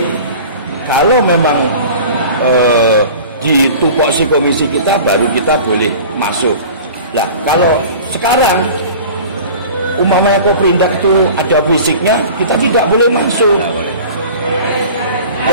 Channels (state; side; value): inverted; both; correlation -0.40